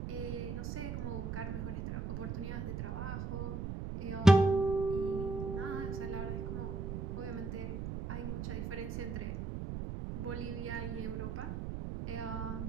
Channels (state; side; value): noise; right; rumble, 4 dB below the sound